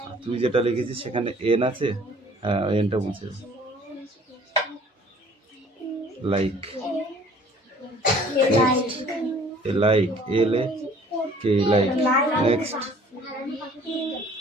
তুই যেটা লিখেছিস সেখানে এন আছে হ্যাঁ ওই এনটা মুছে দাও লাইক লাইক এল এ কে লাইক নেক্সট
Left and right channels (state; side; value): normal; both; correlation 0.53